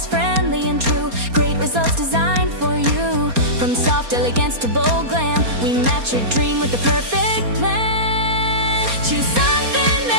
friendly and true. Great results designed for you. From soft elegance to bold glam, we match your dream with the perfect plan. Choose something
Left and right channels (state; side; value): late; left; 4.3 ms